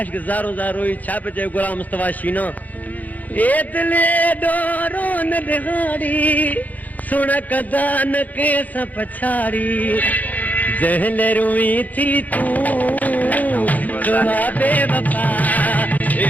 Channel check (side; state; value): right; late; 0.080 ms